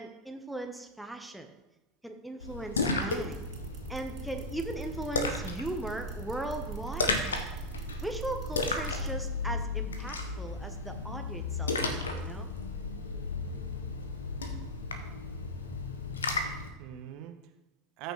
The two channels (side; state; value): both; normal; correlation -0.07